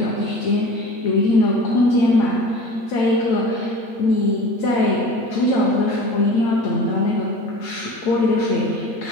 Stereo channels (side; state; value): right; late; 8.5 ms